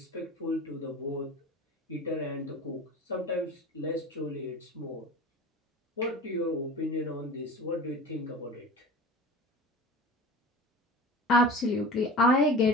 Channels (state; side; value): normal; both; correlation 0.36